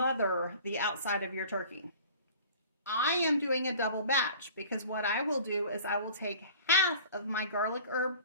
the outside of your turkey. I am doing a double batch because what I will do is I will take half of my garlic herb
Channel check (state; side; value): inverted; both; correlation -0.45